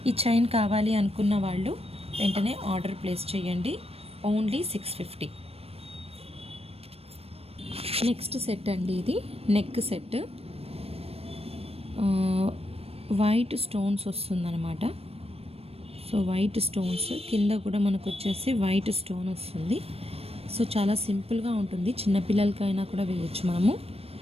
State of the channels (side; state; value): left; late; 0.28 ms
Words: ఈ చైన్ కావాలి అనుకున్న వాళ్ళు వెంటనే ఆర్డర్ ప్లేస్ చేయండి, ఓన్లీ 650. నెక్స్ట్ సెట్ అండి, ఇది నెక్ సెట్. వైట్ స్టోన్స్ వస్తుందన్నమాట. సో వైట్ స్టోన్స్ కింద కూడా మనకు వచ్చేసి వైట్ స్టోన్ వస్తుంది. సో చాలా సింపుల్గా ఉంటుంది, చిన్నపిల్లలకైనా కూడా వేయచ్చు మనము.